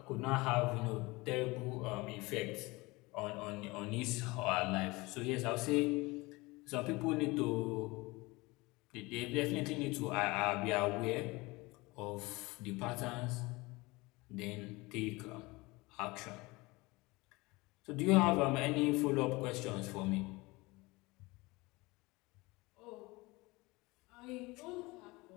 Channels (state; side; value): quieter; right; 23.1 dB